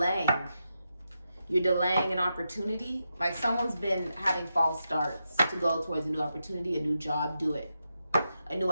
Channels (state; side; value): inverted; both; correlation -0.87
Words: You're delaying an opportunity. Like someone's been having false starts to go towards a new opportunity, a new job. Do it. A new